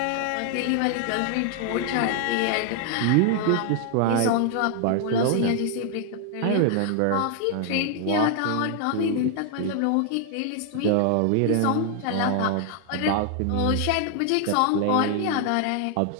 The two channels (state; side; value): different; both; correlation 0.00